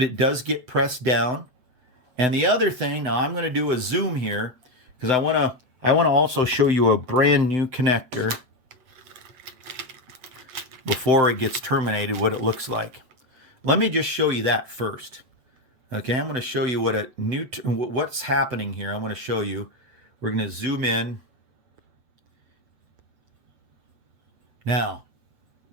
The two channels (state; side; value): late; left; 7.9 ms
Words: it does get pressed down. And the other thing, now I'm going to do a zoom here because I want to also show you a brand new connector before it gets terminated, what it looks like. Let me just show you that first. Okay, I'm going to show you what's happening here. I want to show you. We're going to zoom in. Now,